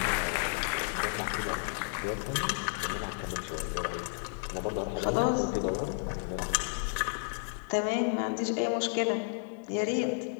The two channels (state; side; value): silent; right; digital silence